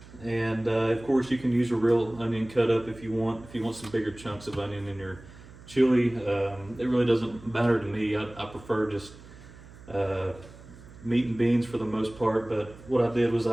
And of course you can use a real onion cut up if you want some bigger chunks of onion in your chili. It really doesn't matter to me. I prefer just meat and beans for the most part, but what I did was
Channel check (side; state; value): right; noise; hum, 19 dB below the sound